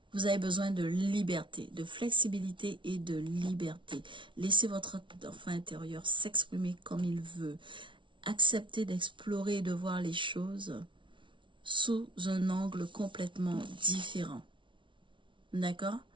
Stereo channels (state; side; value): late; left; 0.24 ms